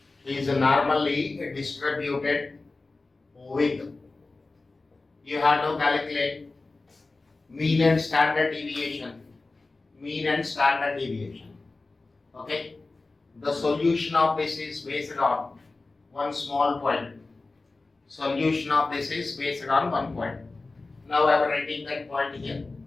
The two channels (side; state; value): right; quieter; 3.5 dB